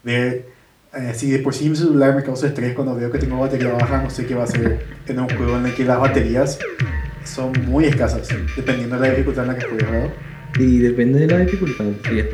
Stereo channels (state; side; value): identical; both; correlation 1.00